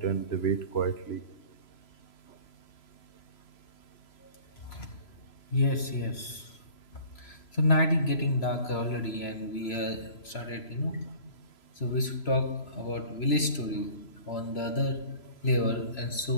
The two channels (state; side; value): late; right; 3.0 ms